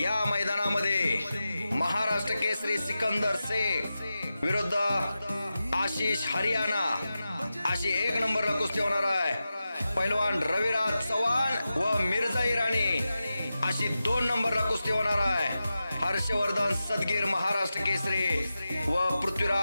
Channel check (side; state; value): both; inverted; correlation -0.92